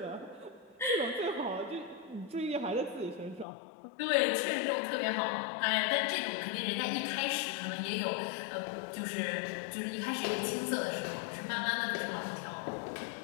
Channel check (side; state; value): right; drops out; at 3.5 s